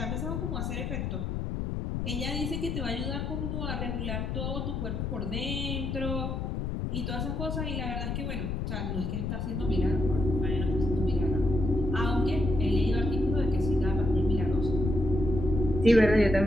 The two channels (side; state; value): left; noise; rumble, 2 dB below the sound